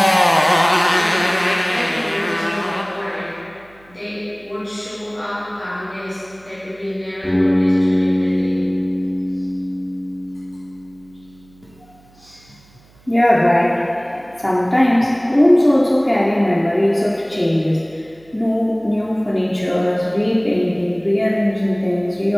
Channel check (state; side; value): noise; right; hum, 29 dB below the sound